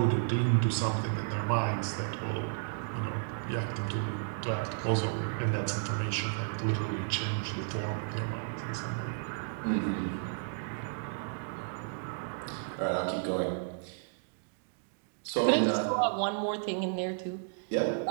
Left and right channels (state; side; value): silent; left; digital silence